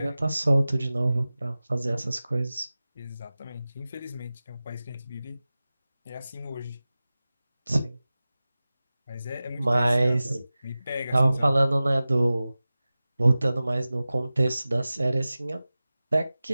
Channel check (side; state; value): both; inverted; correlation -0.96